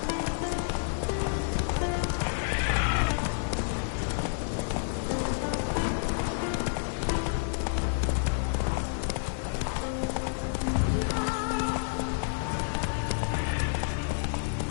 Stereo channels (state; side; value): silent; right; digital silence